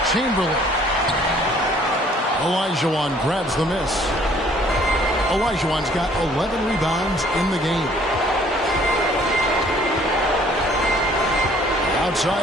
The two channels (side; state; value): both; normal; correlation 0.58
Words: Chamberlain. Olajuwon grabs the miss. Olajuwon's got 11 rebounds in the game.